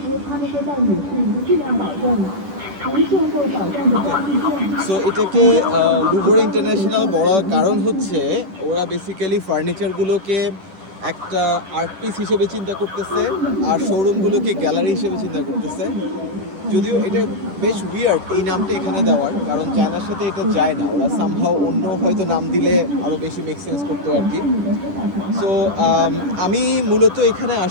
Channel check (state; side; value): late; left; 10 ms